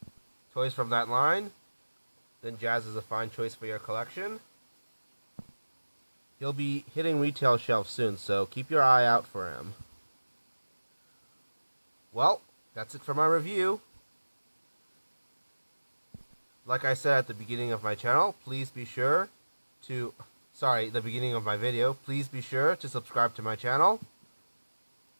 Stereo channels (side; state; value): both; inverted; correlation -1.00